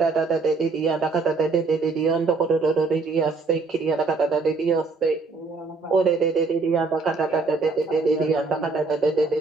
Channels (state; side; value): quieter; left; 4.0 dB